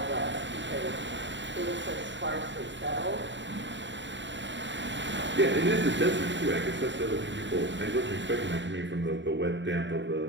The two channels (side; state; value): left; late; 0.53 ms